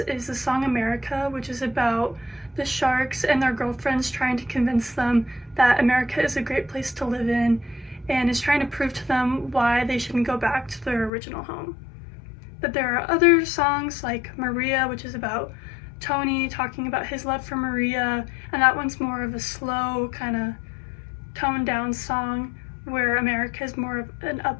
the song America, which is about the Sharks and their girlfriends trying to convince them that America is a great place to live in and is trying to prove to them why they shouldn't go back to their original home. But there are other songs like Maria, which is about Tony talking about his love for Maria, and that one's more of a slow, kind of toned down song, where America is more of an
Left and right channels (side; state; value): right; drops out; at 11.1 s